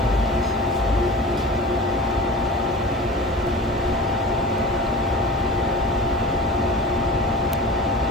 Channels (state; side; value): normal; both; correlation 0.35